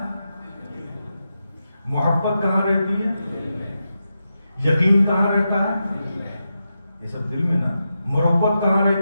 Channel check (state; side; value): inverted; both; correlation -0.88